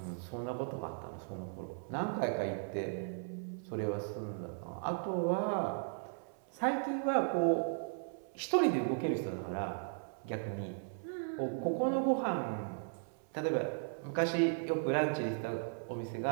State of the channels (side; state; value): left; silent; 53 dB below the other